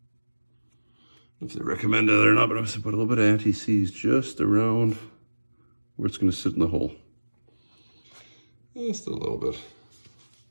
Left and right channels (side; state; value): both; inverted; correlation -1.00